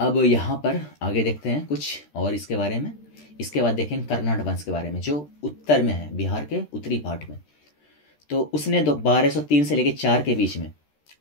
यहाँ पर आगे देखते हैं कुछ और इसके बारे में। इसके बाद देखेंगे कर्नाड वंश के बारे में, जो उत्तर में है, बिहार के उत्तरी पार्ट में। तो उसने 1203 से लेकर 4 के बीच में,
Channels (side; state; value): right; late; 13 ms